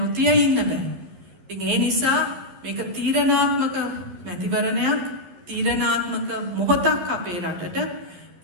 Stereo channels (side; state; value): left; late; 12 ms